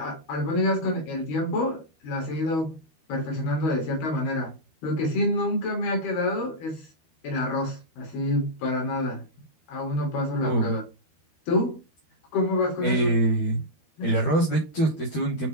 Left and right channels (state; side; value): late; right; 12 ms